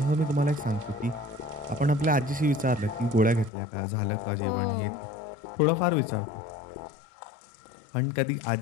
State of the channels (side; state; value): right; drops out; at 3.5 s